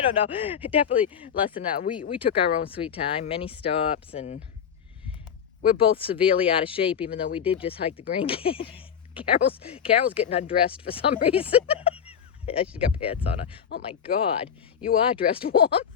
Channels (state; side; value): quieter; right; 7.9 dB